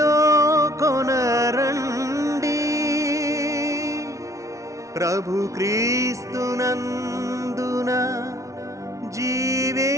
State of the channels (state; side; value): late; left; 0.15 ms